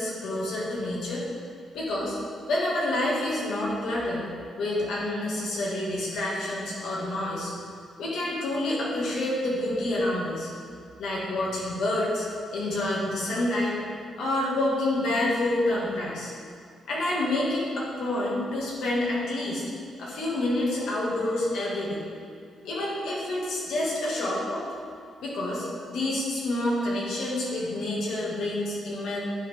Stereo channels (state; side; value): normal; both; correlation 0.77